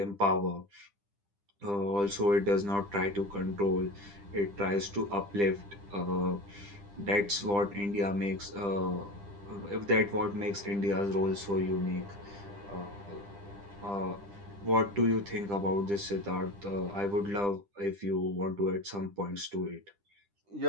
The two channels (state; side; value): late; left; 10 ms